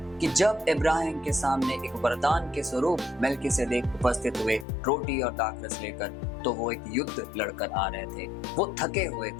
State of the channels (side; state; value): right; drops out; at 4.7 s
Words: कि जब इब्राहिम के सामने एक वरदान के स्वरूप मेल्किसेदेक उपस्थित हुए रोटी और दाखरस लेकर, तो वो एक युद्ध लड़कर आ रहे थे, वो थके हुए